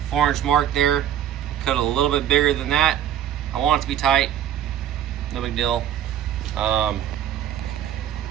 4-inch mark there, cut it a little bit bigger than that. I want it to be tight, no big deal. And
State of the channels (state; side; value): quieter; left; 10.7 dB